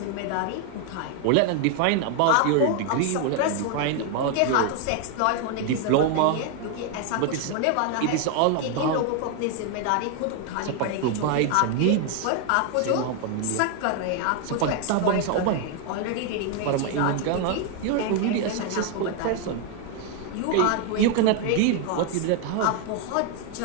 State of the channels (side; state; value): both; different; correlation 0.00